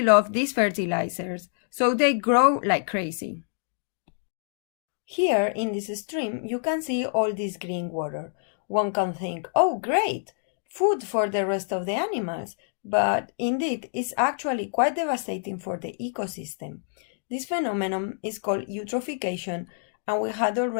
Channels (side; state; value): right; silent; digital silence